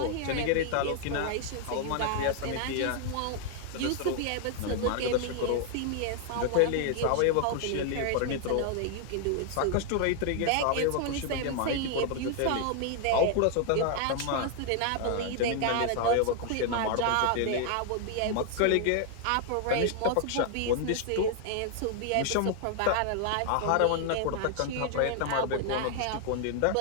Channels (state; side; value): different; both; correlation 0.00